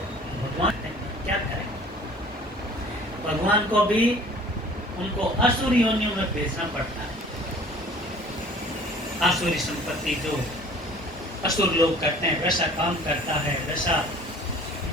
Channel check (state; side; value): normal; both; correlation 0.49